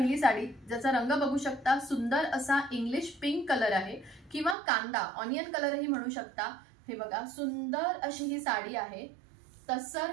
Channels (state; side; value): drops out; left; at 4.5 s